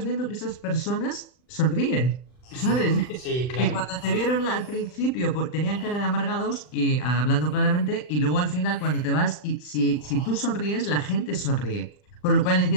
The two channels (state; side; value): late; right; 39 ms